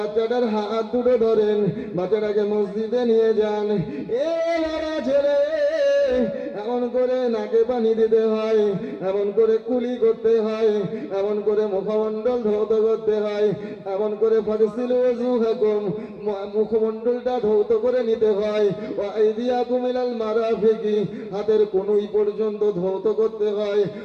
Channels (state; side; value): identical; both; correlation 1.00